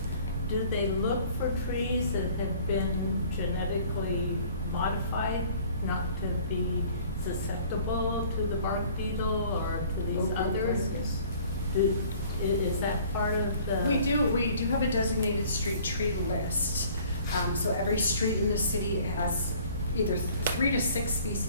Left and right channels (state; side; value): inverted; both; correlation -0.53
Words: do they look for trees that have been genetically modified not to be susceptible to the bark beetle or to these others? Is that part of the? We do have a designated street tree list. So every street in the city has either 3 to 6